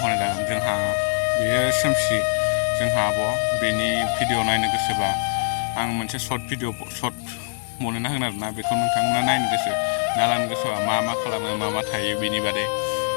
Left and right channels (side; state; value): right; silent; 63 dB below the other